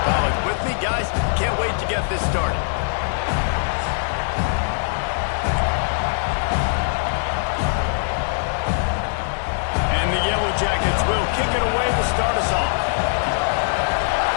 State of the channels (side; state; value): right; silent; digital silence